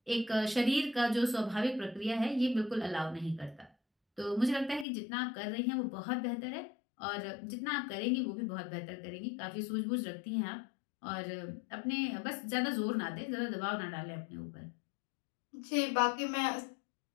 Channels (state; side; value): drops out; right; at 4.9 s